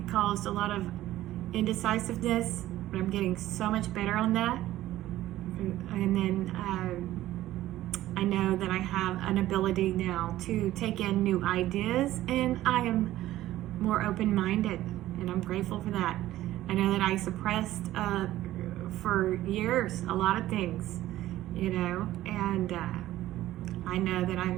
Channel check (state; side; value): quieter; left; 14.8 dB